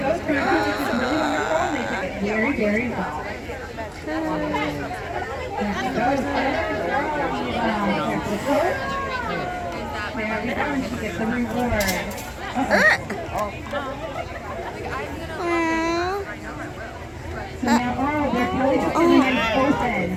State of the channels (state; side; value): identical; both; correlation 1.00